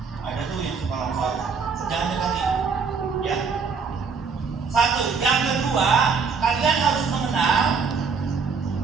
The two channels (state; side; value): quieter; left; 5.4 dB